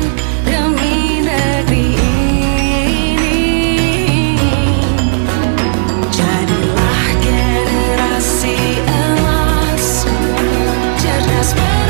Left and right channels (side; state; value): left; silent; 66 dB below the other